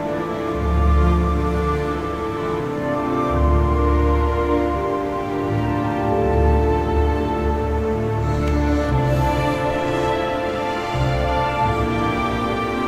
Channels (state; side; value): identical; both; correlation 1.00